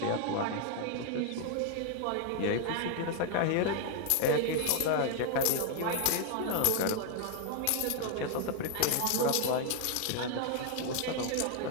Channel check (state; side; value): different; both; correlation 0.00